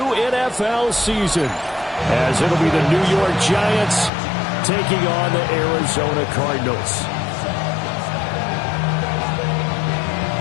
NFL season, as it'll be the New York Giants taking on the Arizona Cardinals.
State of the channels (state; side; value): drops out; right; at 4.1 s